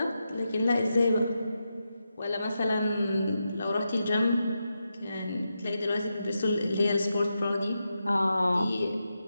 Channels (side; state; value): both; inverted; correlation -0.87